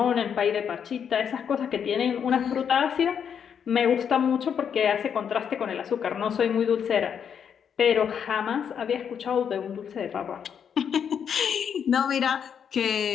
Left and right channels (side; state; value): right; quieter; 7.8 dB